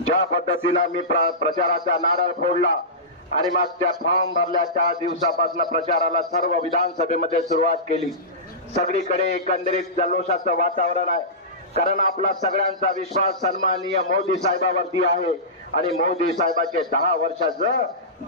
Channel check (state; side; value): normal; both; correlation -0.18